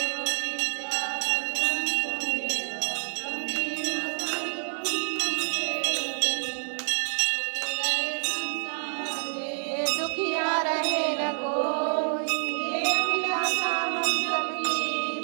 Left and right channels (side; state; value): left; silent; digital silence